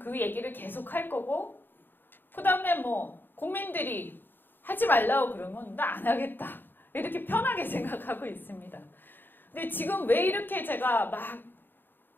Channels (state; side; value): late; right; 0.094 ms